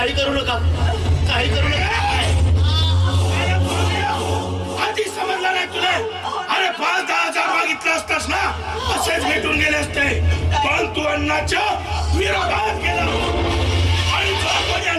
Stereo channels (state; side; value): identical; both; correlation 1.00